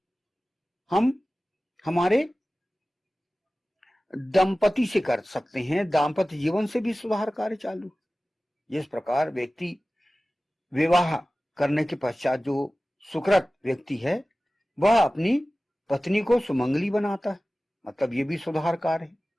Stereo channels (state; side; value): normal; both; correlation 0.97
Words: हम हमारे दंपति से कर सकते हैं। दाम्पत्य जीवन से भी सुधार कार्य चालू। जिस प्रकार व्यक्ति विवाह करने के पश्चात जो सुकृत व्यक्ति है वह अपनी पत्नी को सुमंगली बनाता है, मतलब ये भी सुधार कार्य है।